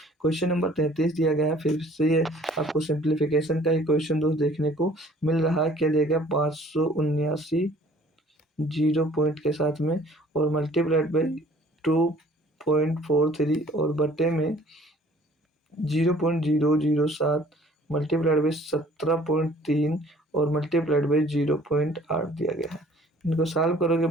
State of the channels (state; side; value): normal; both; correlation 0.54